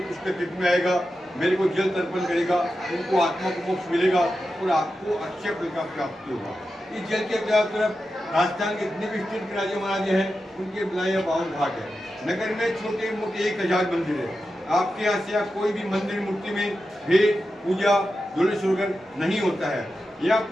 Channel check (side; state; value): both; normal; correlation 0.91